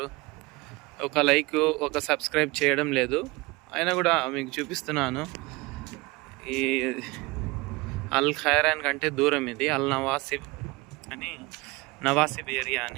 ఒక లైక్, ఒక సబ్స్క్రైబ్ చేయడం లేదు. అయినా కూడా మీకు చూపిస్తున్నాను. ఈ అల్ ఖైరాన్ కంటే దూరం ఇది అల్ నవాసిబ్ అని, నవాసిబ్ ఏరియా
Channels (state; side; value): quieter; left; 23.7 dB